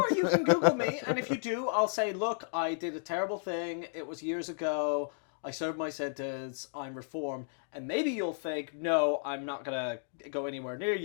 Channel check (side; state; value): right; silent; digital silence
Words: you can Google me, and if you do, I'll say, look, I did a terrible thing. It was years ago. I served my sentence. I'm reformed. And maybe you'll think, no, I'm not going to go anywhere near